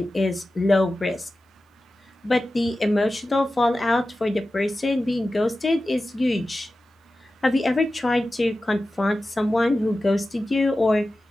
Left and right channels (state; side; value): normal; both; correlation 0.94